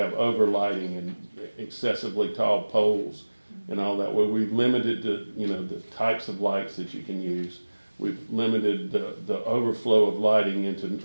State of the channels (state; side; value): inverted; both; correlation -1.00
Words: overlighting and excessively tall poles and all that. Well, we've limited the types of lights that you can use. We've limited the overflow of lighting into